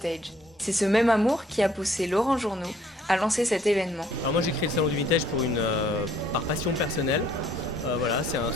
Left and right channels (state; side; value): normal; both; correlation 0.61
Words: C'est ce même amour qui a poussé Laurent Journeau à lancer cet événement. Alors moi j'ai créé le salon du vintage par passion personnelle. Voilà, c'est un